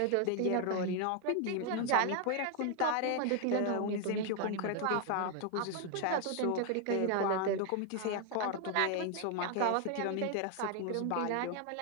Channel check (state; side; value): different; both; correlation 0.01